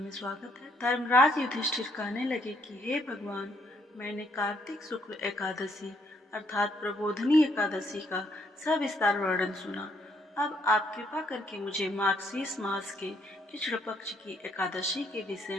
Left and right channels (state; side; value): normal; both; correlation 0.70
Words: स्वागत है। धर्मराज युधिष्ठिर कहने लगे कि हे भगवान, मैंने कार्तिक शुक्ल एकादशी अर्थात प्रबोधनी एकादशी का सविस्तार वर्णन सुना। अब आप कृपा करके मुझे मार्गशीर्ष मास के कृष्ण पक्ष की एकादशी के विषय